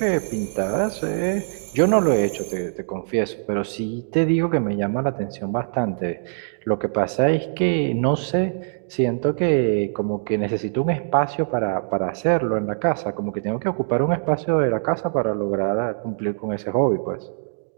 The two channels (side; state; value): left; silent; digital silence